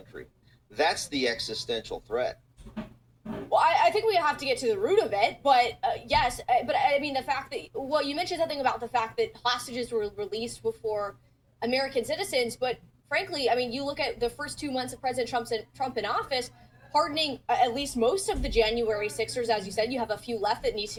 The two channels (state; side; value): identical; both; correlation 1.00